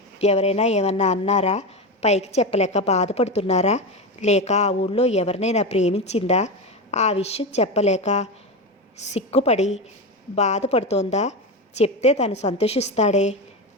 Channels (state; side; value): normal; both; correlation 0.18